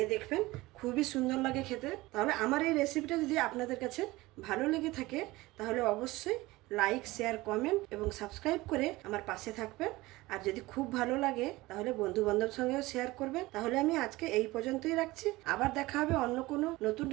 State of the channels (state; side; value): quieter; left; 19.9 dB